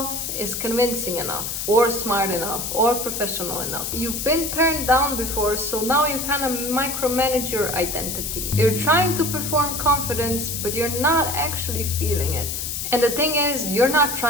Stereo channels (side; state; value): left; noise; hiss, 4 dB below the sound